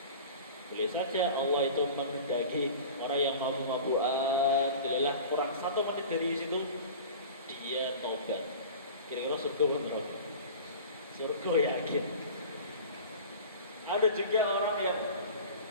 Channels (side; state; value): both; inverted; correlation -0.38